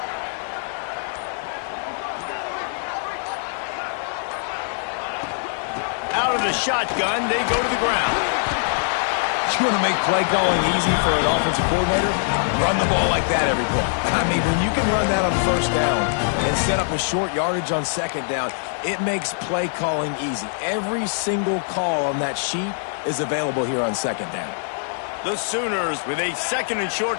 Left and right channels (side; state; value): right; silent; 60 dB below the other